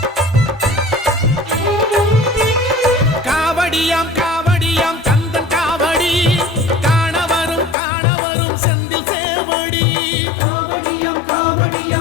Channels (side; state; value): right; drops out; at 7.8 s